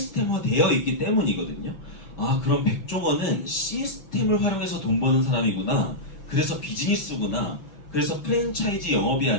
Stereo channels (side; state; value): right; late; 6.0 ms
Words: 되어 있기 때문이거든요. 아, 그럼 백종원은 시스템을 활용해서 돈 버는 사람이구나. 그래서 비즈니스구나. 그래서 프랜차이즈 영업이